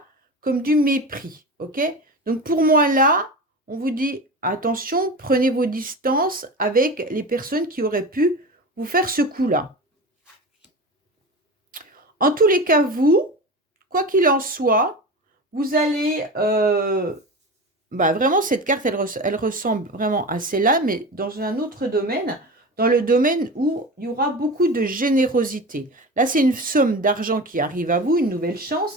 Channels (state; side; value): normal; both; correlation 0.29